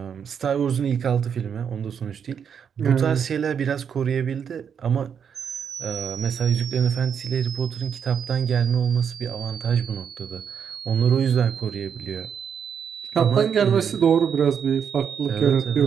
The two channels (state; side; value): quieter; left; 7.5 dB